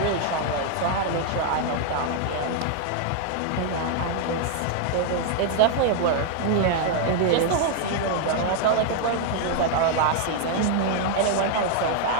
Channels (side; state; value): both; different; correlation 0.00